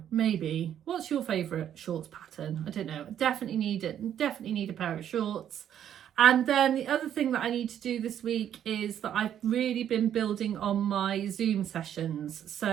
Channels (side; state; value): left; quieter; 10.0 dB